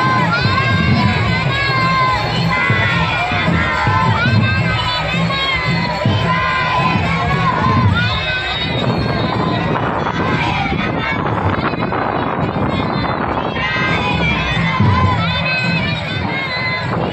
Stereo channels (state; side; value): identical; both; correlation 1.00